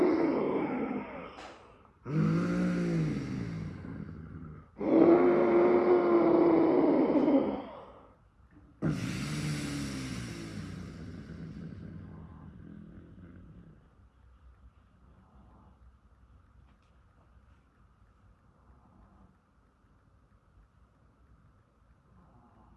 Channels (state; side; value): identical; both; correlation 1.00